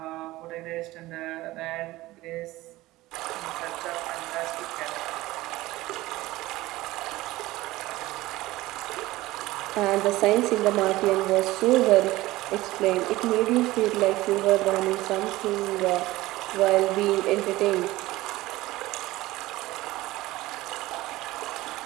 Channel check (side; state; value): left; quieter; 18.1 dB